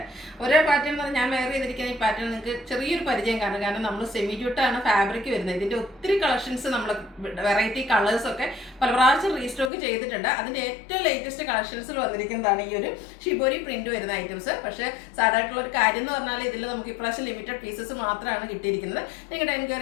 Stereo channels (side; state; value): right; drops out; at 9.7 s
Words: ഓരോ പാറ്റേൺ എന്ന് പറഞ്ഞാൽ ഞാൻ വെയർ ചെയ്തിരിക്കുന്ന ഈ പാറ്റേൺ നിങ്ങൾക്ക് ചെറിയൊരു പരിചയം കാണും. കാരണം നമ്മൾ സെമി ജൂട്ടാണ് ഫാബ്രിക് വരുന്നത്. ഇതിൻ്റെ ഒത്തിരി കളക്ഷൻസ് നമ്മൾ വെറൈറ്റി കളേഴ്സൊക്കെ പല പ്രാവശ്യം റീസ്റ്റോക്ക് ചെയ്തിട്ടുണ്ട്. അതിൻ്റെ ഏറ്റവും ലേറ്റസ്റ്റ് കളക്ഷൻസിൽ വന്നിരിക്കുന്നതാണ് ഈ ഒരു ഷിബോരി പ്രിന്റ് വരുന്ന ഐറ്റംസ്. പക്ഷേ സാധാരണ ഒരു കാര്യം എന്ന് പറഞ്ഞാൽ ഇതിൽ നമുക്ക് ഇപ്രാവശ്യം ലിമിറ്റഡ് പീസസ് മാത്രമാണ് കിട്ടിയിരിക്കുന്നത്. നിങ്ങളുടെ